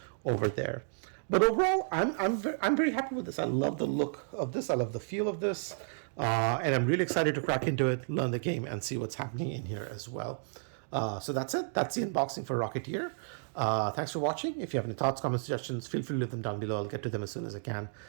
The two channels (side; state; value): left; silent; digital silence